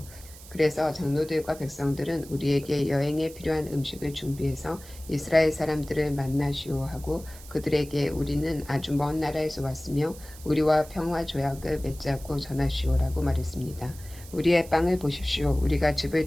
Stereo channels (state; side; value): noise; right; hiss, 19 dB below the sound